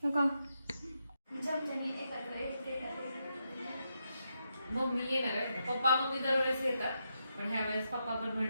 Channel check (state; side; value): inverted; both; correlation -0.83